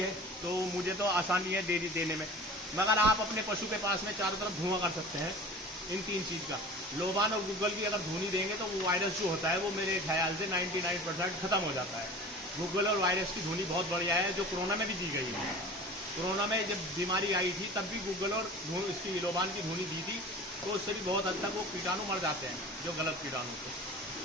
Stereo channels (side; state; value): both; normal; correlation 0.38